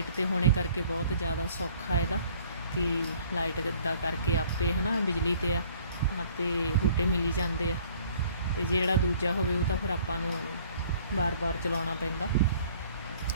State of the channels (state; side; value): inverted; both; correlation -0.56